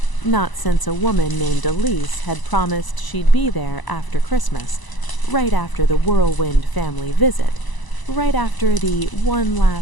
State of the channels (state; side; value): late; right; 1.0 ms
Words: Not since a woman named Elise had promised she'd be there after Christmas, right after the whirlwind family visit, right after the one